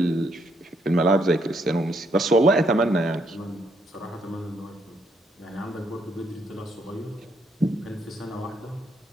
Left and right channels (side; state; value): both; normal; correlation 0.73